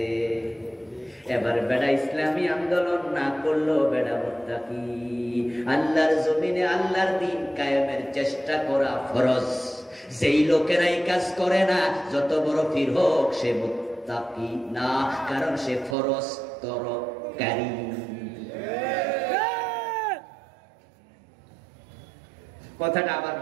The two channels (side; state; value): left; drops out; at 16.0 s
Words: এবার বেড়া ইসলামী আন্দোলন না করলো বেড়া মুত্তাকি। আল্লাহর জমিনে আল্লাহর দ্বীন কায়েমের চেষ্টা করা ফরজ। যেই লোকেরাই কাজ করে না, যত বড় পীর হোক, সে মুত্তাকি না, কারণ সে ফরজ তরকারি। কথাটা আবার